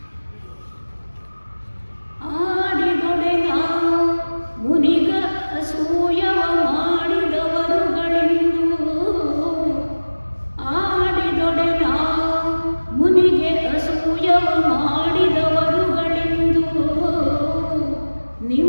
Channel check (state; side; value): inverted; both; correlation -1.00